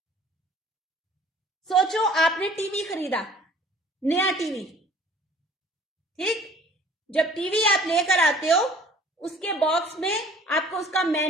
सोचो आपने टीवी खरीदा, नया टीवी, ठीक। जब टीवी आप लेकर आते हो, उसके बॉक्स में आपको उसका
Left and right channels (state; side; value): normal; both; correlation 0.52